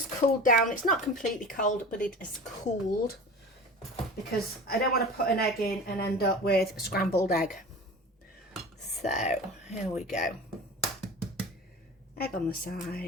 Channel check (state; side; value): normal; both; correlation 0.35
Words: cooled down. It's not completely cold, but it is cooled, because I don't want to put an egg in and end up with a scrambled egg. So here we go. Egg on the